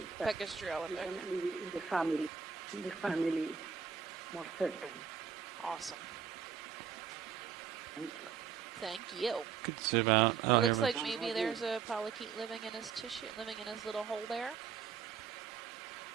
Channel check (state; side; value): quieter; left; 6.8 dB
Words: But Pacastrella, we can okay. leave it in the family. In the family, it's more certain. Awesome. Thank you. Thank you. Could zoom out. Oh, It looks here we like maybe there's a polychaete living in his tissue, living in his little hole there.